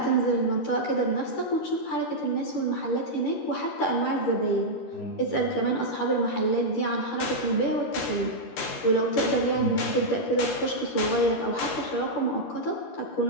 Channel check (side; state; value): right; late; 13 ms